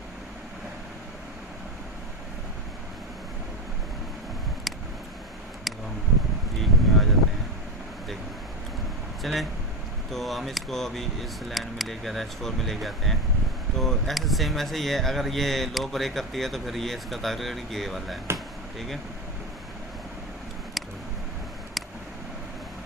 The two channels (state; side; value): normal; both; correlation 0.17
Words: हम वीक में आ जाते हैं, देखें चलें, तो हम इसको अभी इस लाइन में लेके H4 में लेके आते हैं। तो ऐसे सेम ऐसे ही है, अगर ये लो ब्रेक करती है तो फिर ये इसका टारगेट ये वाला है, ठीक है।